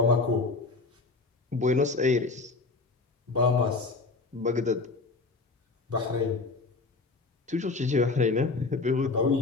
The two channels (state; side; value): quieter; right; 3.8 dB